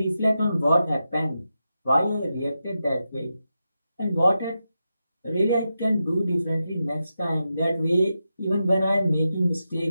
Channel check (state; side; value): inverted; both; correlation -0.89